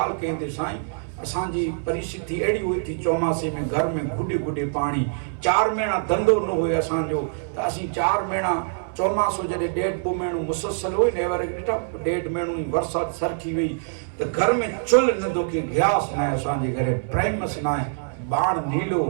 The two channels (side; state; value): left; silent; 62 dB below the other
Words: केंदे साईं असांजी परिस्थिति एड़ी हुई थी चौमासे में घर में गुडे गुडे पानी 4 महीना धंधो न हुए असांजो त असी 4 महीना चौमासो जडे 1.5 महीनो मुसलसल हुई ने वर 1.5 महीनो बरसात सरखी हुई तो घर में चुल न दुखे गैस न असांजे घरे प्राइमस न बाण नीलो